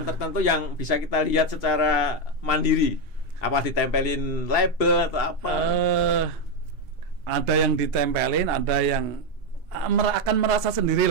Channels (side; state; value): both; normal; correlation 0.06